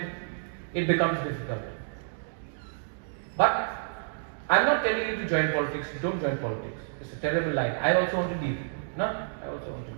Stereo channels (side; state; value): left; silent; digital silence